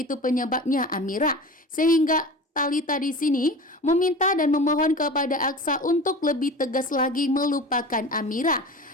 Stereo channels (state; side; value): normal; both; correlation 0.35